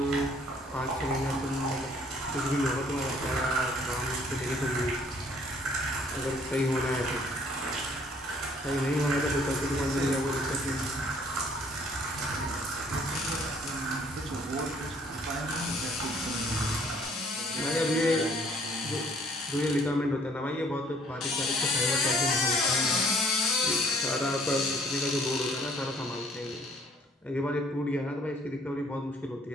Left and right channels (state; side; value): normal; both; correlation 0.60